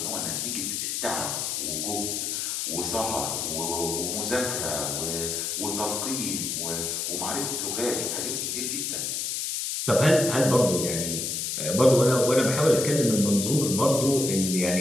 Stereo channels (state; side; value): noise; left; hiss, 2 dB below the sound